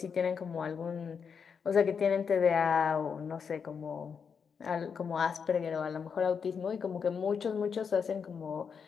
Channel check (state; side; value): quieter; right; 6.4 dB